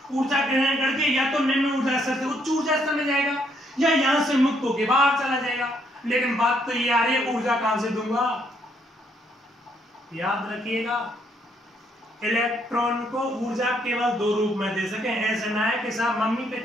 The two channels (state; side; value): normal; both; correlation 0.71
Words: ऊर्जा ग्रहण करके या तो निम्न ऊर्जा स्तर से उच्च ऊर्जा स्तर में जाएगा या यहां से मुक्त होकर बाहर चला जाएगा। लेकिन बात तो ये आ रही है, ऊर्जा कहां से दूंगा? याद रखिएगा, इलेक्ट्रॉन को ऊर्जा केवल दो रूप में दे सके। ऐसा ना है कि साहब मम्मी पे